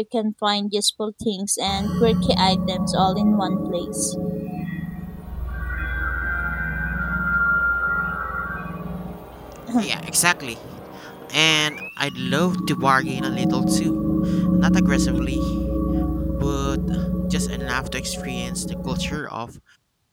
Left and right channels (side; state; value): both; identical; correlation 1.00